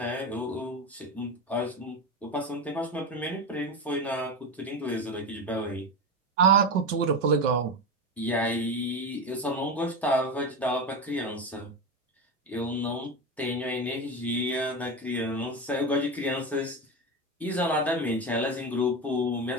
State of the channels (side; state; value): both; normal; correlation 0.20